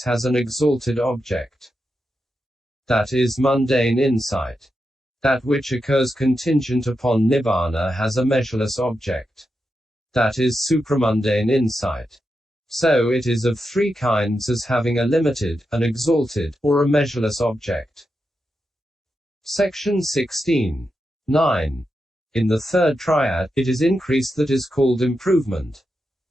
has an exalted object. That is mundane insight. That which occurs contingent upon nibbana has a measureless object. That is supramundane insight. So it is of three kinds, as having a limited, an exalted, or a measureless object. Section 16. 9. In the third triad, it is increase that is called improvement.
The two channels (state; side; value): normal; both; correlation 0.87